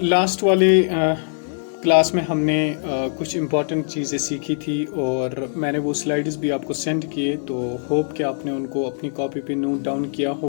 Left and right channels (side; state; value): right; silent; 60 dB below the other